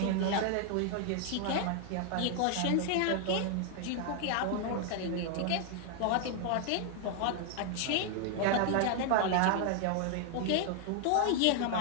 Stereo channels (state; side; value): different; both; correlation 0.00